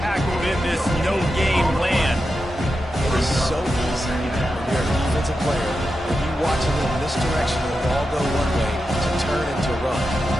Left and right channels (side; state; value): both; normal; correlation 0.89